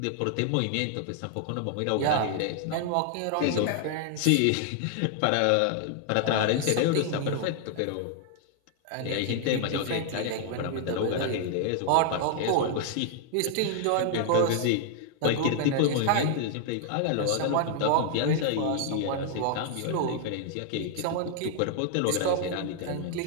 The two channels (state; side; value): different; both; correlation 0.00